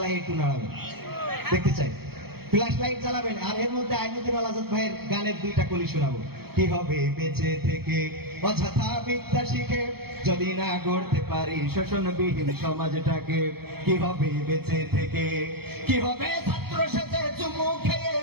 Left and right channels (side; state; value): left; late; 0.96 ms